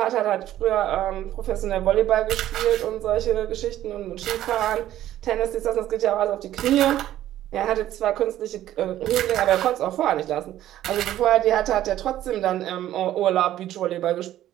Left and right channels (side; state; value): left; quieter; 13.0 dB